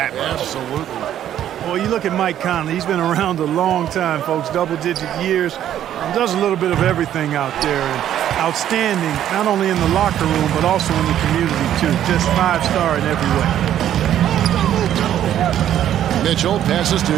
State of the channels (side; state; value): left; quieter; 11.1 dB